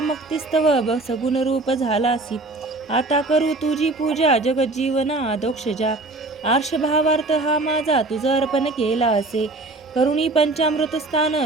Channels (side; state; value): left; quieter; 3.1 dB